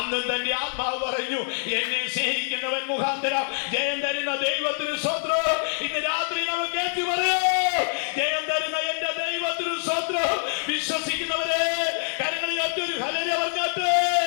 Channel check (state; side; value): silent; right; digital silence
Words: തന്റെ ആത്മാവ് പറഞ്ഞു: എന്നെ സ്നേഹിക്കുന്നവൻ മുഖാന്തരം ജയം തരുന്ന ദൈവത്തിന് സ്വത്രം. ഇന്ന് രാത്രി നമുക്ക് ഏറ്റു പറയോ: ജയം തരുന്ന എന്റെ ദൈവത്തിന് സ്വത്രം. വിശ്വസിക്കുന്നവരെ കരങ്ങളിൽ ഒറ്റൊരു ഹല്ലേലൂയ പറഞ്ഞാട്ടെ.